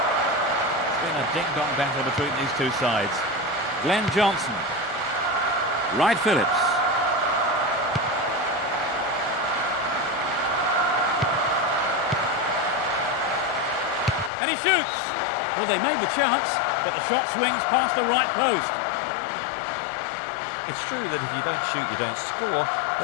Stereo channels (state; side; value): drops out; right; at 14.3 s